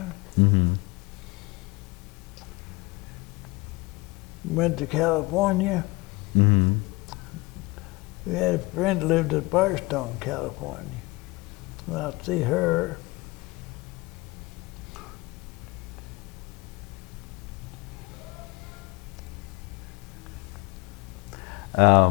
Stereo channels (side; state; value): right; quieter; 24.2 dB